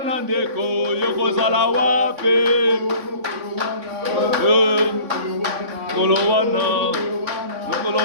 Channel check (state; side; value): late; left; 3.5 ms